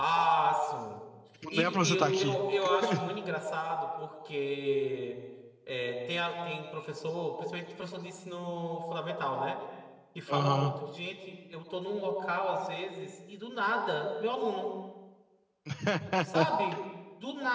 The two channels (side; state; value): both; identical; correlation 1.00